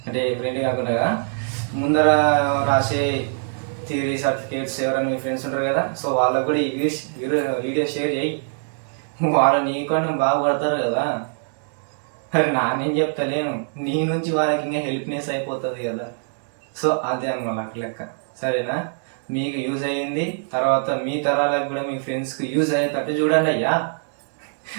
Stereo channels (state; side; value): silent; left; digital silence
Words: అంటే ఫ్రెండ్ కాకుండా ముందర రాసే థియరీ సర్టిఫికేట్స్ ఎవరైనా మీ ఫ్రెండ్స్ ఉంటారు కదా, సో వాళ్ళకు కూడా ఈ వీడియో షేర్ చేయి. వాళ్ళు నీకన్నా బాగుపడతారు కదా. మరి నేను చెప్తలేను, నీ నుంచి వాళ్ళకి ఇంకా హెల్ప్నెస్ అయిపోతుంది కదా. సో అదే అనమాట అట్లా లెక్క, సరేనా. మీకు యూజ్ అయ్యింది, తర్వాత మీ తరాలకు కూడా మీ ఫ్రెండ్స్కి యూజ్ అయ్యేటట్టు చూడండి అయ్యా.